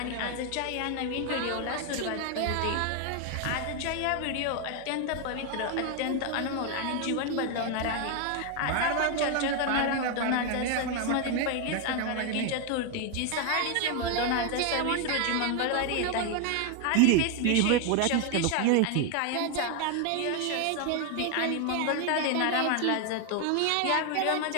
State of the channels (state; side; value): different; both; correlation 0.01